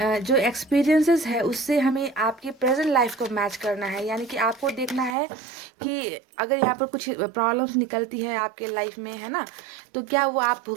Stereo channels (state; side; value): drops out; left; at 5.2 s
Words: जो एक्सपीरियंसेस है उससे हमें आपकी प्रेजेंट लाइफ को मैच करना है, यानी कि आपको देखना है कि अगर यहाँ पर कुछ प्रॉब्लम्स निकलती है आपके लाइफ में, है ना, तो क्या वो आप